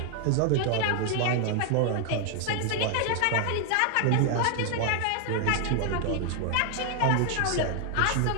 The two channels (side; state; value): both; different; correlation 0.00